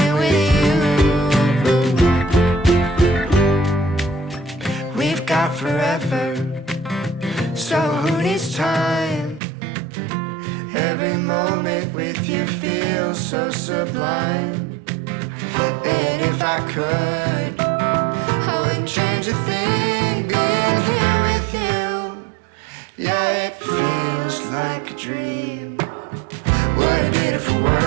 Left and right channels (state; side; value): drops out; left; at 9.4 s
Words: with you. We've got forever, so who needs time? Every moment with you feels so sublime. And if I could, I wouldn't change a thing being here with you. Yeah, it feels like a dream. What a beautiful